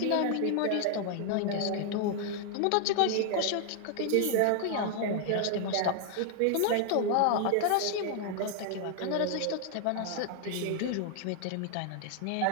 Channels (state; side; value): different; both; correlation 0.00